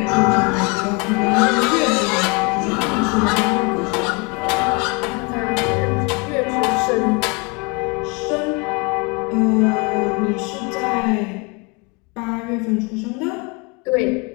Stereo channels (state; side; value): quieter; right; 29.8 dB